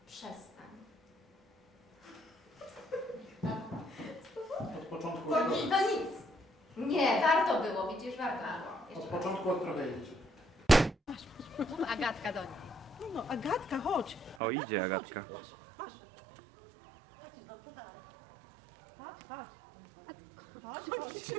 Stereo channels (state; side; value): drops out; left; at 14.4 s